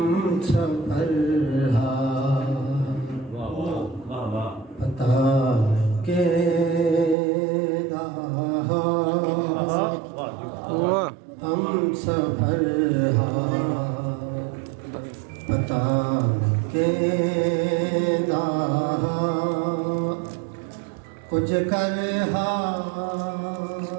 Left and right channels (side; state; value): left; drops out; at 7.2 s